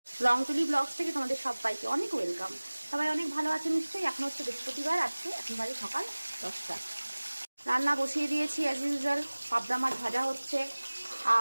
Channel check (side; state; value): both; inverted; correlation -1.00